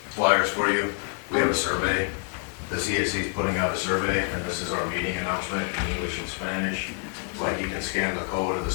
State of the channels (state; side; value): quieter; right; 39.7 dB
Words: flyers for you. We have a survey. The CAC is putting out a survey, and this is our meeting announcement in English and Spanish. Like, you can scan the code of the